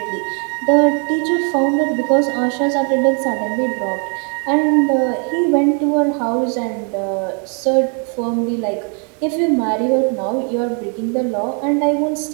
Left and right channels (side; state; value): left; quieter; 39.8 dB